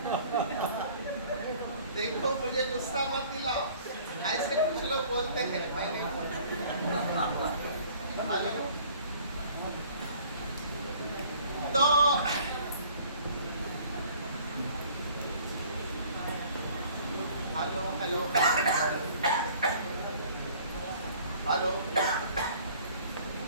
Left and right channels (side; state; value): both; inverted; correlation -0.53